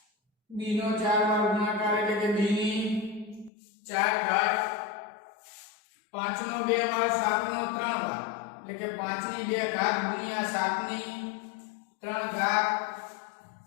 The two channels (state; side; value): drops out; right; at 3.5 s